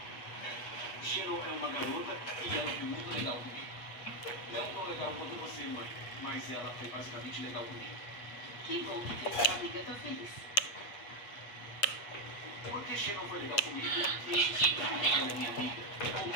Sharon é uma garota e ela foi muito legal comigo. Não tão legal quanto você, mãe, mas ela foi basicamente legal comigo. Que bom que sua amiga tá feliz. Porque Sharon foi legal comigo, isso significa que ela é minha amiga. Ou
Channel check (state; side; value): late; right; 8.3 ms